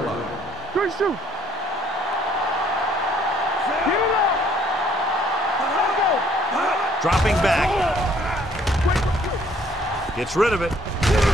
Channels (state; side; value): normal; both; correlation 0.62